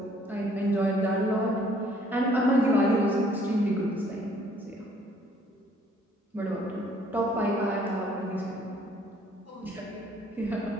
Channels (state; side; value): normal; both; correlation 0.61